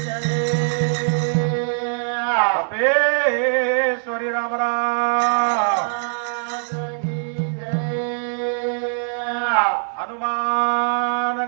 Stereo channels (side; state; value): left; silent; 62 dB below the other